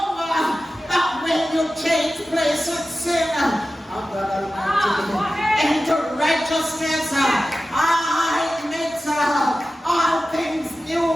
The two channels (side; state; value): both; normal; correlation 0.94